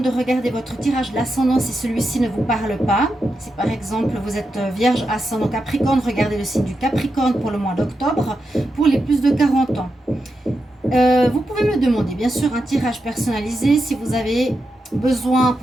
de regarder votre tirage de l'ascendant si celui-ci ne vous parle pas. Si par exemple vous êtes Vierge, ascendant Capricorne, regardez le signe du Capricorne pour le mois d'octobre pour les plus de 40 ans. Vous pouvez me demander bien sûr un tirage personnalisé si vous avez besoin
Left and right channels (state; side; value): normal; both; correlation 0.87